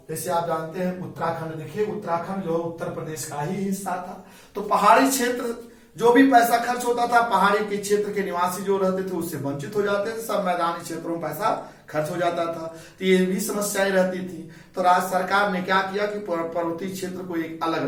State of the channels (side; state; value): both; identical; correlation 1.00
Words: जैसे आप जानते हैं उत्तराखंड, देखिए उत्तराखंड जो है उत्तर प्रदेश का ही हिस्सा था। तो पहाड़ी क्षेत्र जो भी पैसा खर्च होता था, पहाड़ी के क्षेत्र के निवासी जो रहते थे उससे वंचित हो जाते थे, सब मैदानी क्षेत्रों में पैसा खर्च हो जाता था। तो ये भी समस्याएं रहती थी। तो राज्य सरकार ने क्या किया कि पर्वतीय क्षेत्र को एक अलग